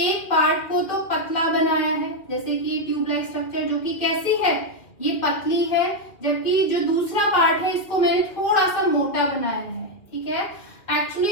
पार्ट को तो पतला बनाया है, जैसे कि ये ट्यूब लाइक स्ट्रक्चर जो कि कैसी है, ये पतली है, जबकि जो दूसरा पार्ट है इसको मैंने थोड़ा सा मोटा बनाया है। ठीक है,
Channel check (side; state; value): right; late; 2.1 ms